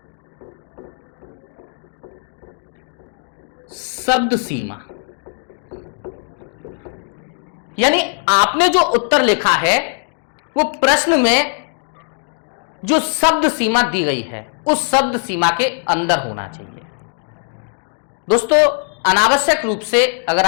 शब्द सीमा। यानी आपने जो उत्तर लिखा है वो प्रश्न में जो शब्द सीमा दी गई है उस शब्द सीमा के अंदर होना चाहिए। दोस्तों, अनावश्यक रूप से अगर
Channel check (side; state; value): right; silent; 58 dB below the other